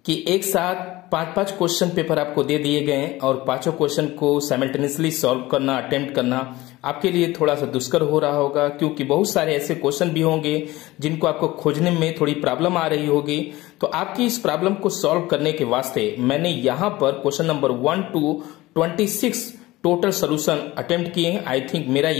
कि एक साथ पांच क्वेश्चन पेपर आपको दे दिए गए और पांचों क्वेश्चन को साइमल्टेनियसली सॉल्व करना, अटेम्प्ट करना आपके लिए थोड़ा सा दुष्कर हो रहा होगा, क्योंकि बहुत सारे ऐसे क्वेश्चन भी होंगे जिनको आपको खोजने में थोड़ी प्रॉब्लम आ रही होगी। तो आपकी इस प्रॉब्लम को सॉल्व करने के वास्ते मैंने यहां पर question number 1 to 26 total solution attempt किए हैं। आई थिंक मेरा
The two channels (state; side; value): quieter; right; 18.7 dB